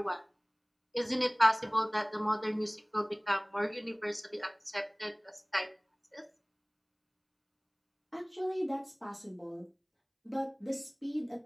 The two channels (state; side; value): identical; both; correlation 1.00